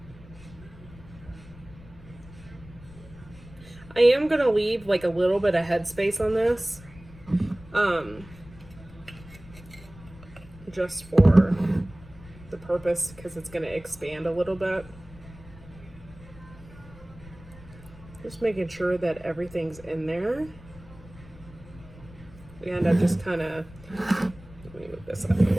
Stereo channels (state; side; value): noise; left; rumble, 19 dB below the sound